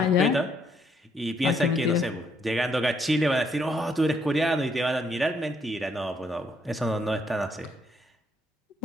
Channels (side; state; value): both; normal; correlation 0.72